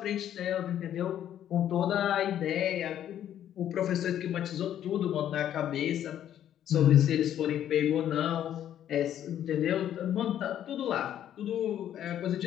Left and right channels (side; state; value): right; quieter; 10.8 dB